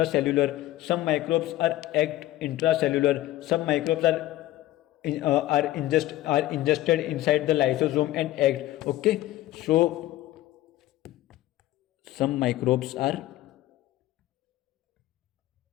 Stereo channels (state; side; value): quieter; right; 15.5 dB